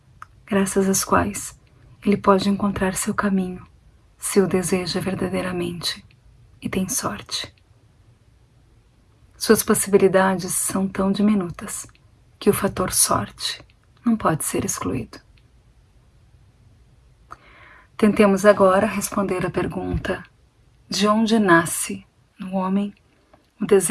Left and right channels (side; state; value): both; identical; correlation 1.00